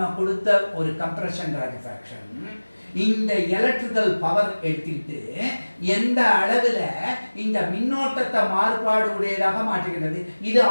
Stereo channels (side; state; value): both; inverted; correlation -1.00